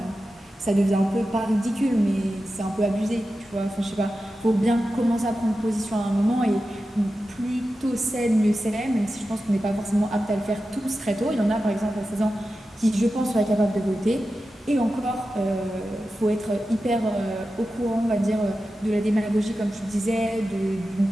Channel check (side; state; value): both; normal; correlation 0.92